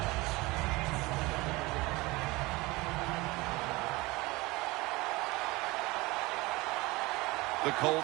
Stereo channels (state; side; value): quieter; left; 22.2 dB